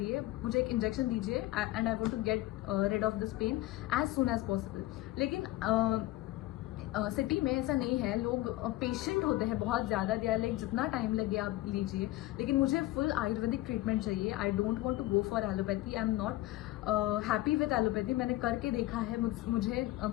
मुझे एक इंजेक्शन दीजिए and I want to get rid of this pain as soon as possible. लेकिन सिटी में ऐसा नहीं है, लोग पेशेंट होते हैं बहुत ज़्यादा, दे आर लाइक जितना टाइम लगे आप लीजिए, लेकिन मुझे फुल आयुर्वेदिक ट्रीटमेंट चाहिए। I don't want to go for allopathy, I am not happy with allopathy. मैंने करके देखा है, मुझे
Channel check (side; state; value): right; quieter; 17.0 dB